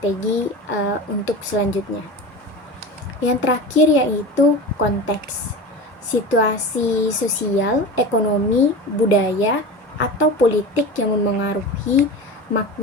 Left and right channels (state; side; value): normal; both; correlation 0.30